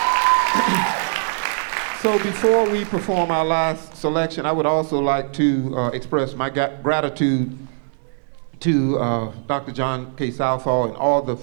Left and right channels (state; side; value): silent; left; digital silence